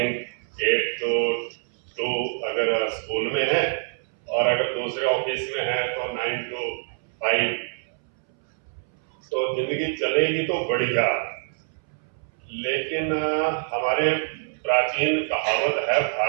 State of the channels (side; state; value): left; silent; 62 dB below the other